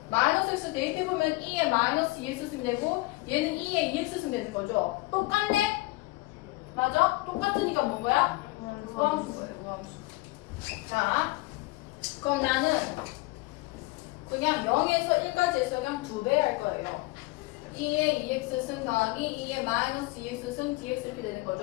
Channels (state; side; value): quieter; right; 21.7 dB